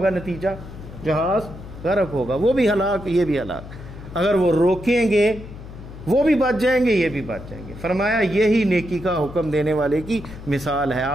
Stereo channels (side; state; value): left; noise; hum, 14 dB below the sound